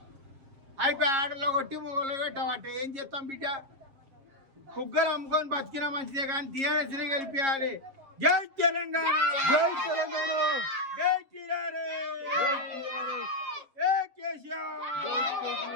అయిపోయి ఆడలో కొట్టి మొగలో పెట్టామంటే ఏం చేస్తాం బిడ్డ? కుగ్గలు అమ్ముకొని బతికినా మంచిదే కానీ టీఆర్ఎస్ని గెలిపియాలి. జై తెలంగాణ, జై తెలంగాణ, జై ఏ కేసీఆర్.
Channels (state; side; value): late; left; 7.4 ms